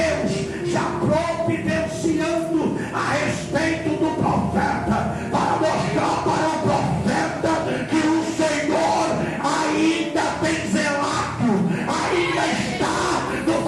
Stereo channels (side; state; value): both; identical; correlation 1.00